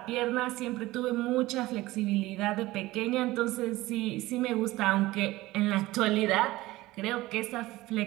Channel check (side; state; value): left; quieter; 18.3 dB